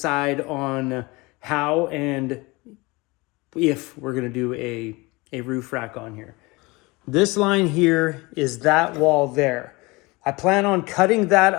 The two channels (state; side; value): quieter; right; 24.0 dB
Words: on how and if we're gonna do a roof rack on here. This line here is that wall there. I plan on cutting that